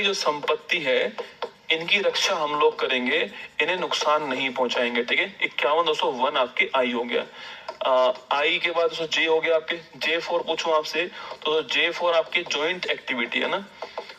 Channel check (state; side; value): identical; both; correlation 1.00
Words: जो संपत्ति है, इनकी रक्षा हम लोग करेंगे, इन्हें नुकसान नहीं पहुंचाएंगे, ठीक है। 51 दोस्तों 1 आपके आई हो गया। आई के बाद जे हो गया आपके, J4 पूछूं आपसे तो J4 आपके जॉइंट एक्टिविटी है ना,